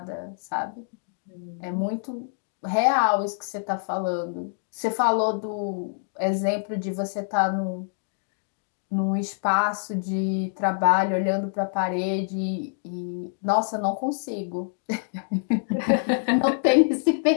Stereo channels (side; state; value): right; silent; digital silence